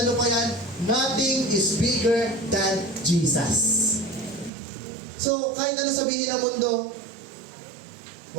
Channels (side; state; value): left; drops out; at 4.5 s